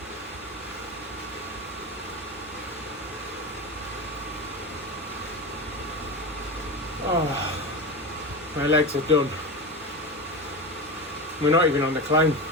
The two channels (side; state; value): both; normal; correlation 0.23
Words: Oh, my legs are done. We're not even on the climb.